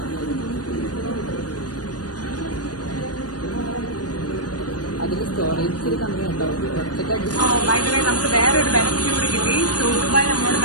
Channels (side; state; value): right; late; 0.68 ms